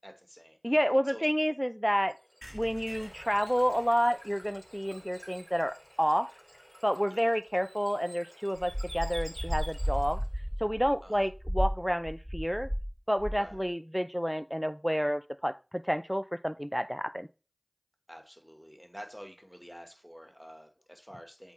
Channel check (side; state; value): both; identical; correlation 1.00